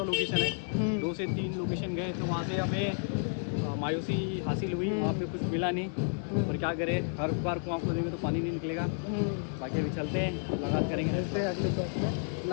लोकेशन है। 2 से 3 लोकेशन गए तो वहाँ से हमें मायूसी हासिल हुई, वहाँ पे कुछ मिला नहीं। पर क्या करें, हर बार कुआं खोदेंगे तो पानी नहीं निकलेगा। बाकी अभी चलते हैं, मुलाकात करेंगे। मिलते हैं अगले ब्लॉग में।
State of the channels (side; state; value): right; silent; 57 dB below the other